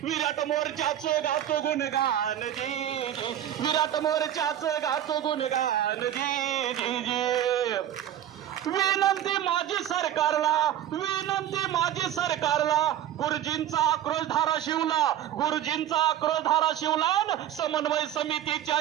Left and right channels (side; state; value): left; quieter; 11.4 dB